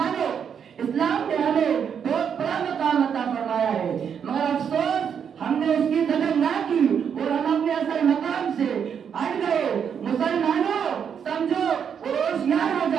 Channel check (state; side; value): quieter; left; 7.6 dB